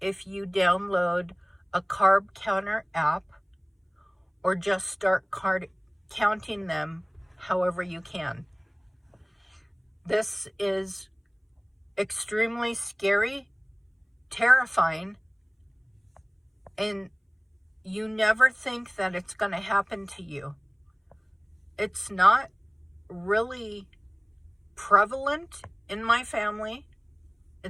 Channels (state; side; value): identical; both; correlation 1.00